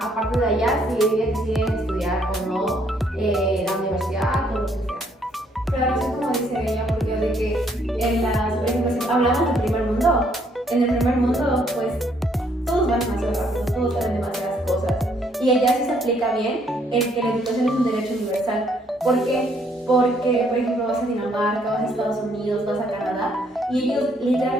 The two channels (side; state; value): both; normal; correlation 0.68